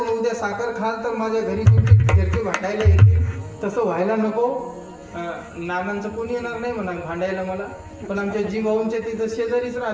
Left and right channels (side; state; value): both; identical; correlation 1.00